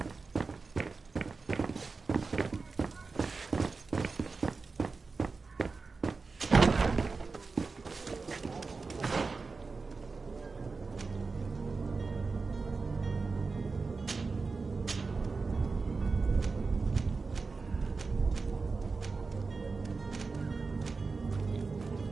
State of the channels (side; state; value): left; quieter; 4.3 dB